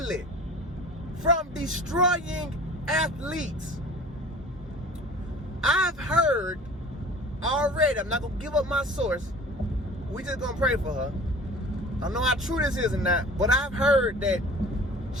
from destroying athletes. I've heard already, I'm not going to give up my source. We just going to pray for her. I don't know how true this is or not, but I've heard that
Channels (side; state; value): both; normal; correlation 0.43